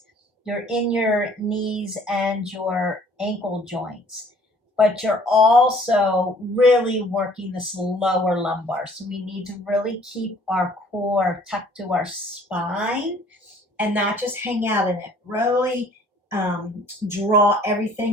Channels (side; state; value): both; normal; correlation 0.56